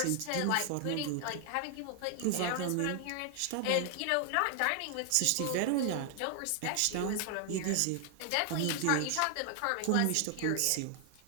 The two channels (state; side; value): different; both; correlation 0.00